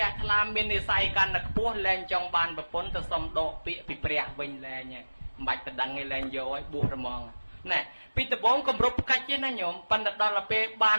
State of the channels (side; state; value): both; inverted; correlation -1.00